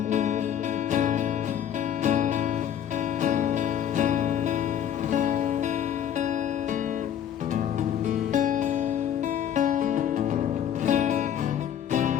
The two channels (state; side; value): quieter; right; 9.8 dB